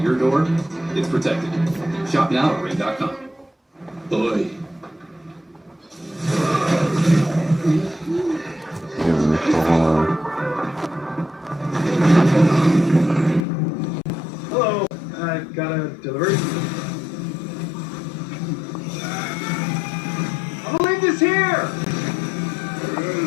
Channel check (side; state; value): right; drops out; at 13.5 s